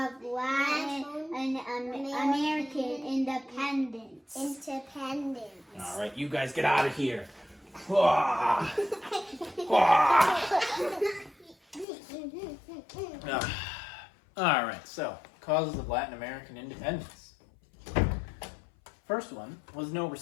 Latin and American independence. All right, you guys get out of here. All right, so causes of Latin American independence. First one was no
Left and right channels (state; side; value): drops out; right; at 11.9 s